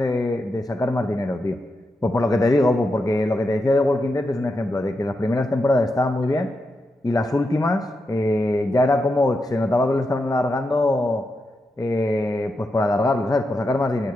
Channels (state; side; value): normal; both; correlation 0.86